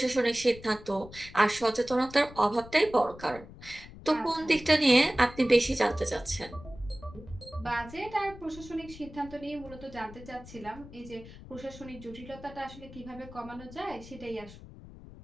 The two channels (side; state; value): left; noise; rumble, 17 dB below the sound